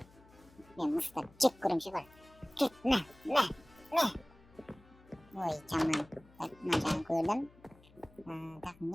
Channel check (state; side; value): noise; left; hum, 25 dB below the sound